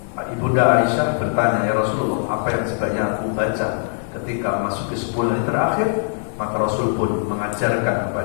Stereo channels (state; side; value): silent; right; 65 dB below the other